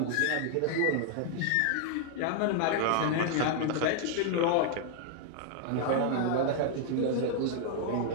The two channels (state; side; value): different; both; correlation 0.00